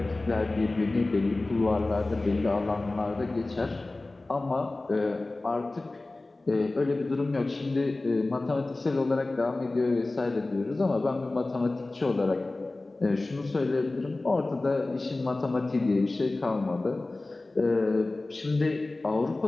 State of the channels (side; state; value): right; quieter; 3.0 dB